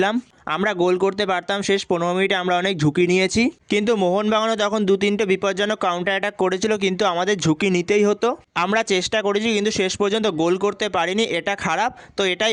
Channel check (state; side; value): identical; both; correlation 1.00